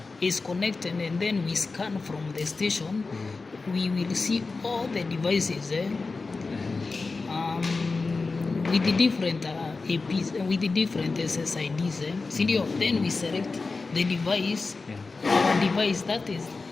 is connected and then we scan from the station, we will see all the devices with the different APs, with the different SSIDs. Then we select the device, our device, that is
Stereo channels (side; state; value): right; quieter; 4.0 dB